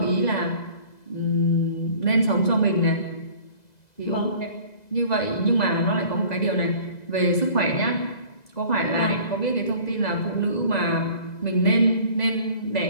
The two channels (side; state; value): right; late; 2.0 ms